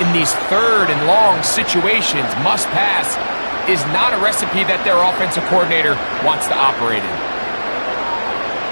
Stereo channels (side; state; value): both; inverted; correlation -1.00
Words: these third and long situations, must pass, is not a recipe that their offensive coordinator wants to operate in.